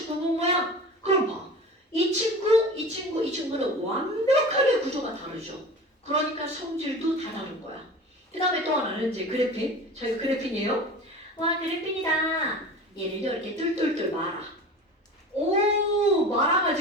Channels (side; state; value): both; normal; correlation 0.35